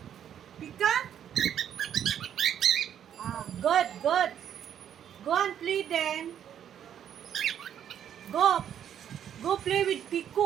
Pika? Good. Go and play then. Go play with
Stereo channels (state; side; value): quieter; left; 9.6 dB